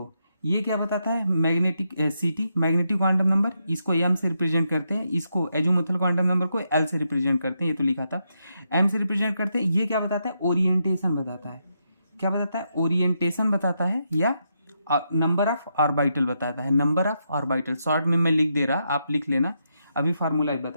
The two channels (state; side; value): inverted; both; correlation -0.81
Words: ये क्या बताता है, मैग्नेटिक सीटी, मैग्नेटिक क्वांटम नंबर, इसको एम से रिप्रेजेंट करते हैं, इसको एजोमुथल क्वांटम नंबर को एल से रिप्रेजेंट करते हैं, ये तो लिखा था, एम से रिप्रेजेंट करते हैं। ये क्या बताता है, ओरिएंटेशन बताता है। क्या बताता है, ओरिएंटेशन बताता है, या नंबर ऑफ ऑर्बिटल बताता है, नंबर ऑफ ऑर्बिटल। शॉर्ट में मैं लिख दे रहा, आप लिख लेना, अभी फार्मूला